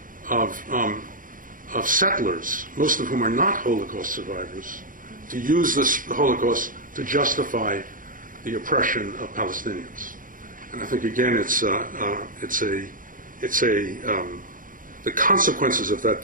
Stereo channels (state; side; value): late; left; 0.39 ms